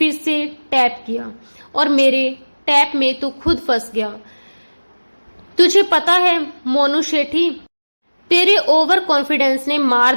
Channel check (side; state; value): both; inverted; correlation -1.00